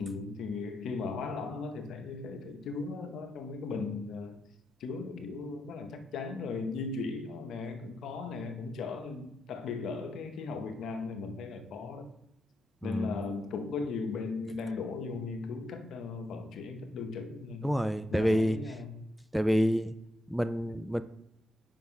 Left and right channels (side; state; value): both; normal; correlation 0.82